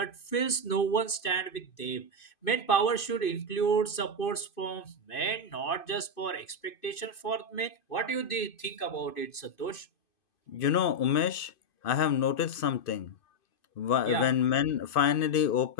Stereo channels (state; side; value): late; right; 2.5 ms